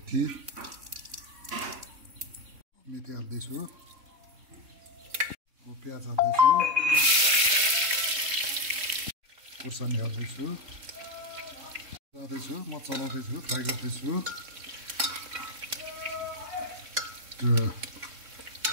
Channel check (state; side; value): late; left; 3.6 ms